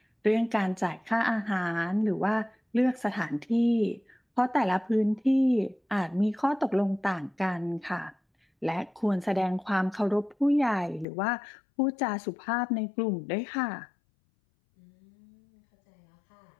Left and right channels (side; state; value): right; drops out; at 11.1 s